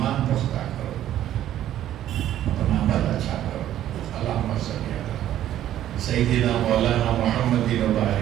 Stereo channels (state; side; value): quieter; left; 12.1 dB